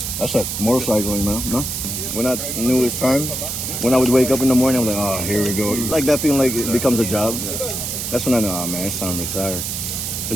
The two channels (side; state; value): right; noise; hiss, 4 dB below the sound